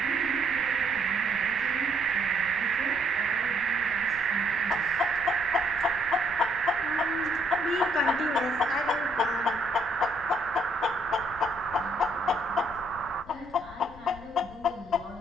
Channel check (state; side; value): noise; left; rumble, 21 dB below the sound